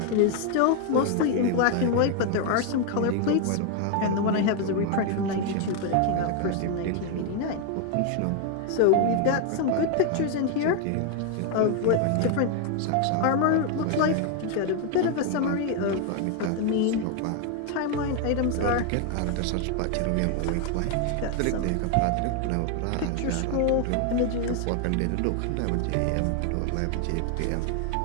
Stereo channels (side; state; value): both; different; correlation 0.01